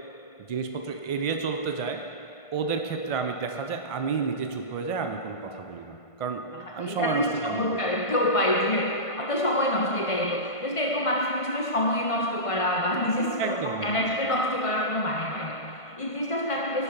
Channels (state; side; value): late; right; 1.5 ms